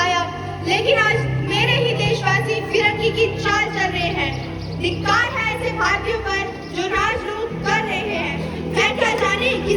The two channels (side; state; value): both; identical; correlation 1.00